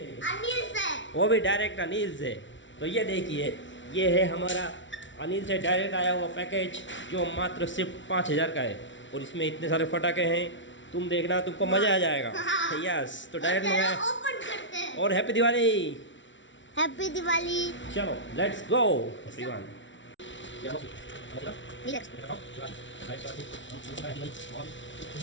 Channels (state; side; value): late; right; 0.55 ms